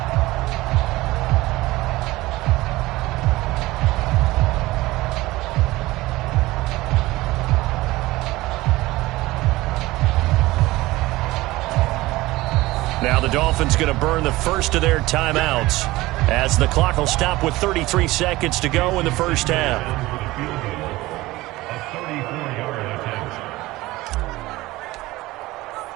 Now the Dolphins going to burn the first of their timeouts as the clock will stop with 33 seconds to go in the 1st half.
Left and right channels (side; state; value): left; quieter; 18.9 dB